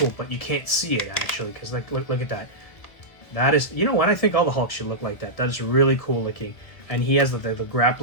But you can't see it actually, because look at that. That is, you know what, I think all the Hulks should look like that. That is really cool looking. And he has the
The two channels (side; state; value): right; late; 1.5 ms